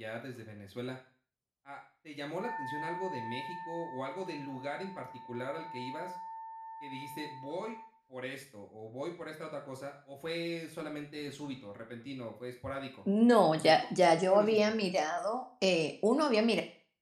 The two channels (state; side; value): identical; both; correlation 1.00